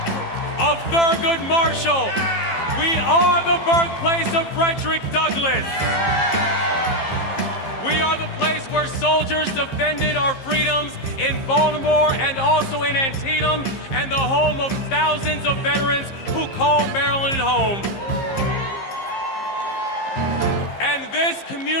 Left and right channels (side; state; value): right; late; 15 ms